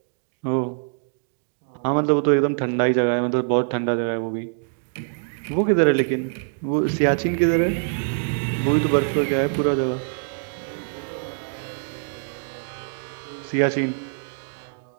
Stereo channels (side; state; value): left; silent; digital silence